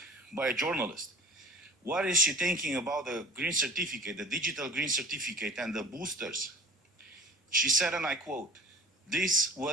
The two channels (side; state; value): both; normal; correlation 0.42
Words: by a journalist, what is she thinking about the green certificate, the digital green certificate and the boosters? She said, and I quote, "This